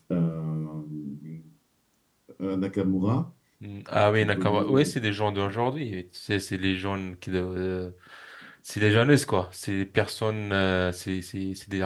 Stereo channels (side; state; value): both; identical; correlation 1.00